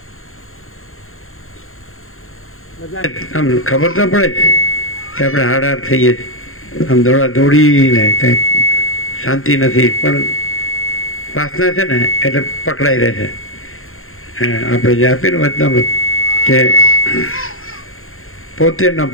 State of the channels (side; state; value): right; late; 0.61 ms